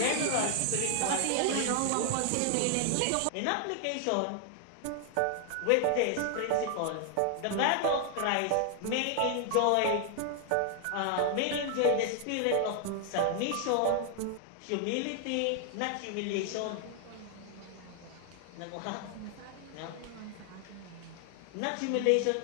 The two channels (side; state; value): both; different; correlation 0.00